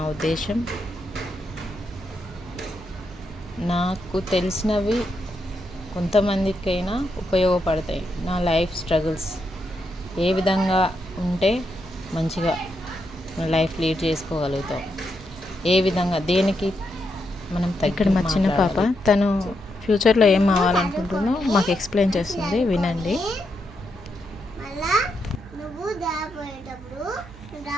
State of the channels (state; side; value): noise; right; hum, 19 dB below the sound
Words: ఉద్దేశం, నాకు తెలిసినవి కొంతమందికైనా ఉపయోగపడతాయి. నా లైఫ్ స్ట్రగుల్స్ ఏ విధంగా ఉంటే మంచిగా లైఫ్ లీడ్ చేసుకోగలుగుతాం, ఏ విధంగా దేనికి మనం ఇక్కడ మా చిన్న పాప తను ఫ్యూచర్లో ఏం అవ్వాలనుకుంటుందో మాకు ఎక్స్ప్లెయిన్ చేస్తుంది, వినండి.